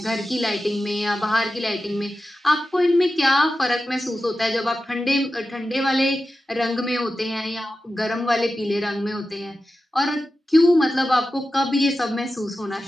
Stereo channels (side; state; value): both; normal; correlation 0.92